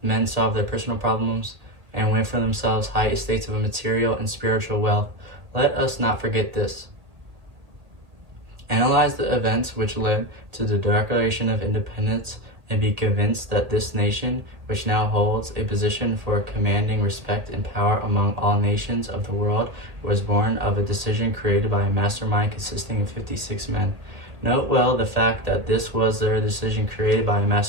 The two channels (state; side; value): late; left; 1.8 ms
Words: men solve their personal problems and win for themselves high estates of material and spiritual wealth. Let us not forget this. Analyze the events which led to the Declaration of Independence, and be convinced that this nation, which now holds a position for commanding respect and power among all nations of the world, was born of a decision created by a mastermind consisting of 56 men. Note well the fact that this was their decision created by a